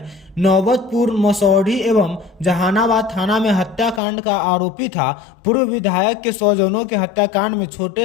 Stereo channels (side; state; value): right; drops out; at 4.0 s